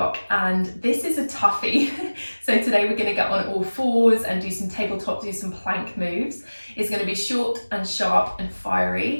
and this is a toughie. So today we're going to get on all fours and do some tabletop, do some plank moves. It's going to be short and sharp and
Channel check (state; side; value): inverted; both; correlation -1.00